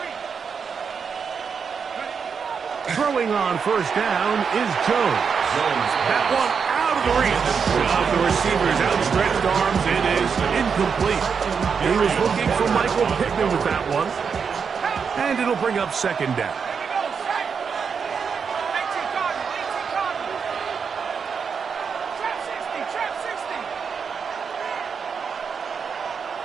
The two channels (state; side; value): quieter; left; 6.2 dB